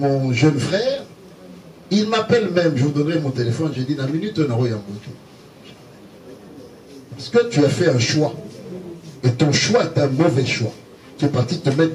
jeune frère, il m'appelle même, je vous donnerai mon téléphone, j'ai dit, dans une minute, on aura un bouton. Parce que tu as fait un choix. Et ton choix est un mauvais choix. Tu es parti te mettre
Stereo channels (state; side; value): identical; both; correlation 1.00